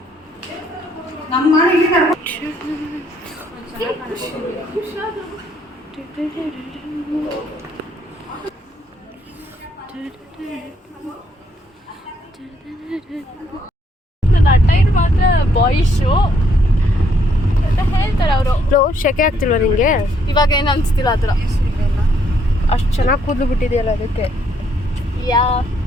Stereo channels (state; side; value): normal; both; correlation 0.70